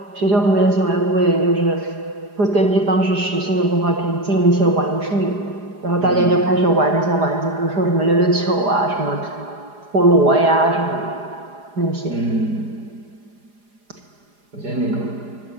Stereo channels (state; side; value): late; left; 4.9 ms